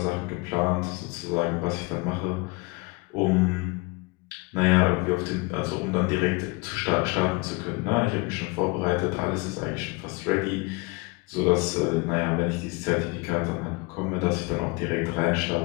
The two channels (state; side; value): quieter; right; 26.6 dB